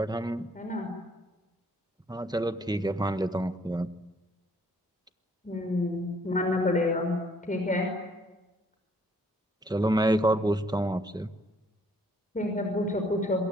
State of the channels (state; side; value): normal; both; correlation 0.65